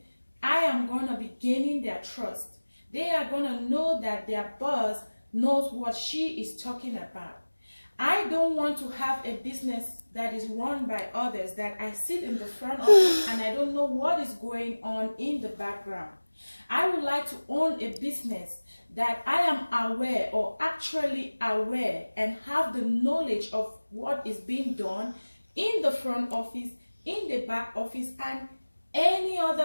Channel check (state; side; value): inverted; both; correlation -1.00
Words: I am going to be gaining their trust. They are going to know that their boss knows what she is talking about. I don't want to have a business that is run by others, that I sit in the front office and I don't know what is going on in the background. I would like to own a business that I am aware or actually aware and have the knowledge of what is being done in the front office, in the back office, and any